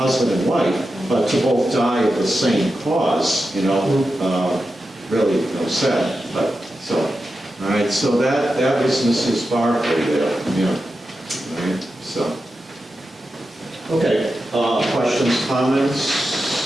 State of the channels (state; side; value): normal; both; correlation 0.90